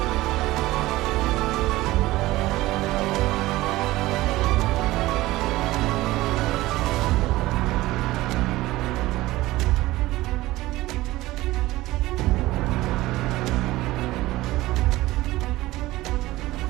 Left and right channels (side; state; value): left; quieter; 17.9 dB